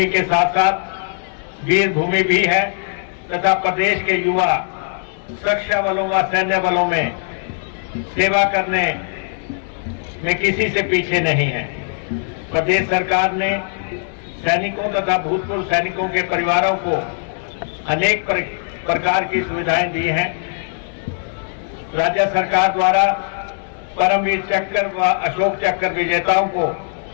के साथ साथ वीर भूमि भी है तथा प्रदेश के युवा सुरक्षा बलों व सैन्य बलों में सेवा करने में किसी से पीछे नहीं है। प्रदेश सरकार ने सैनिकों तथा भूतपूर्व सैनिकों के परिवारों को अनेक प्रकार की सुविधाएं दी हैं। राज्य सरकार द्वारा परमवीर चक्र व अशोक चक्र विजेताओं को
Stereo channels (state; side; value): silent; right; digital silence